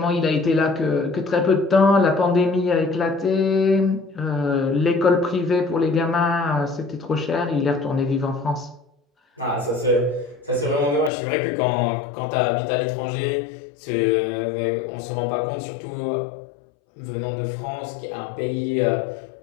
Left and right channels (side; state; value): right; drops out; at 11.1 s